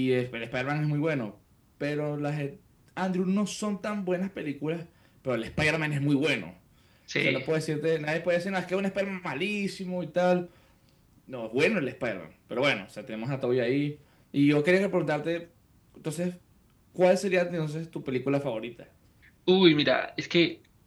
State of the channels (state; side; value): identical; both; correlation 1.00